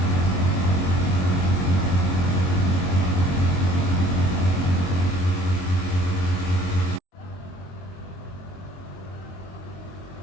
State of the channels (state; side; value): late; right; 22 ms